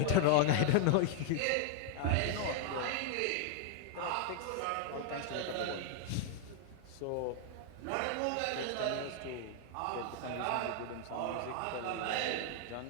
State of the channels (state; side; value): different; both; correlation 0.00